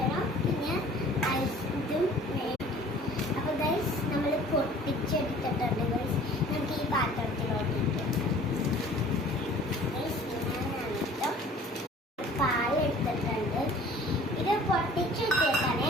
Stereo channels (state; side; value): normal; both; correlation 0.49